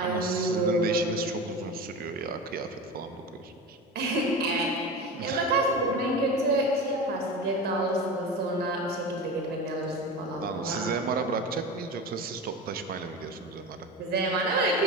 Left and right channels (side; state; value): both; normal; correlation 0.28